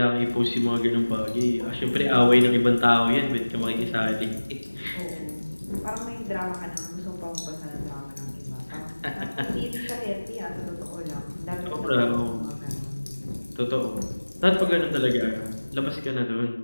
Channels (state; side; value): inverted; both; correlation -1.00